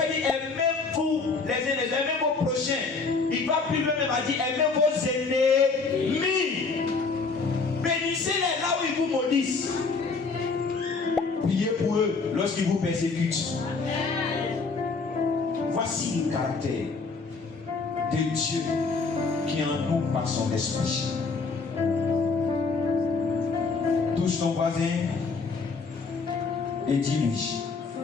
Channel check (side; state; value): right; quieter; 4.4 dB